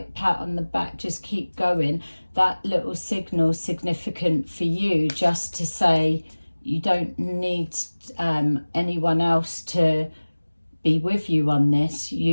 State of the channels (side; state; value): both; inverted; correlation -1.00